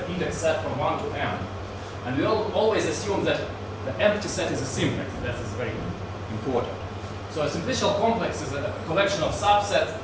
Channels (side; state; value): both; identical; correlation 1.00